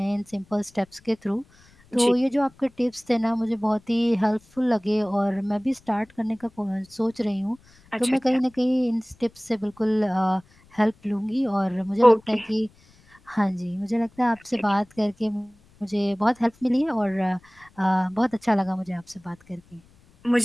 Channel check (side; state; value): left; noise; rumble, 29 dB below the sound